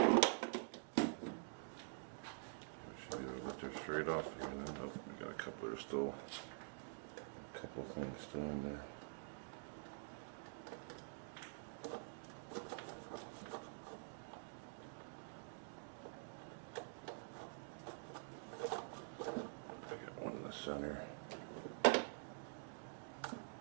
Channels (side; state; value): left; silent; digital silence